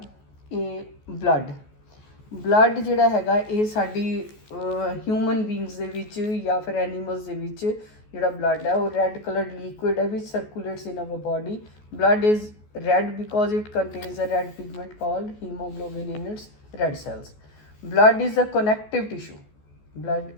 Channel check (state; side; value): late; right; 14 ms